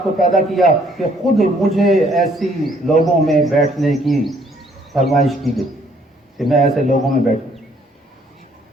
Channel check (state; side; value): normal; both; correlation 0.64